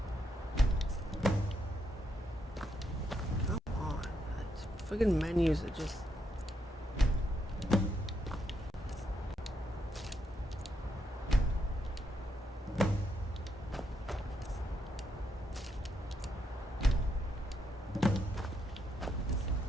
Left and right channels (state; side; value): normal; both; correlation 0.79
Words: Come on. Friggin' menus are just...